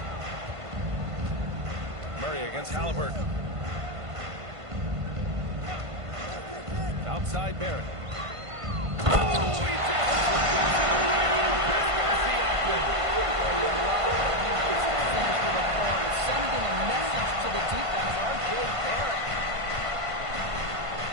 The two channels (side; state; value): left; late; 1.5 ms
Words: Murray against Halliburton. Outside Barrett. Oh, he just Sending a message to the defense, R.J. Barrett.